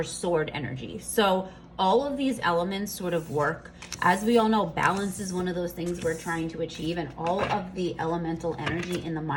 sword energy. So all of these elements sort of work. As we all know, balance is one of those things we're trying to achieve, and all of the elemental energy in the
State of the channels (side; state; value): both; identical; correlation 1.00